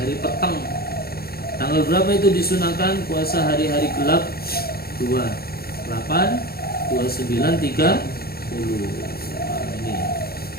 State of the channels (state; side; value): late; right; 0.45 ms